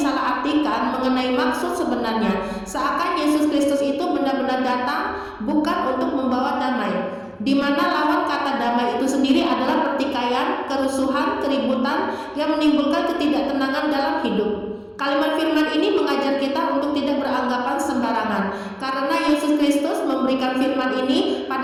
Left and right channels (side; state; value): both; identical; correlation 1.00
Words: mengenai maksud sebenarnya, seakan Yesus Kristus itu benar-benar datang bukan untuk membawa damai, di mana lawan kata damai itu sendiri adalah pertikaian, kerusuhan, keributan yang menimbulkan ketidaktenangan dalam hidup. Kalimat firman ini mengajar kita untuk tidak beranggapan sembarangan, karena Yesus Kristus memberikan firman ini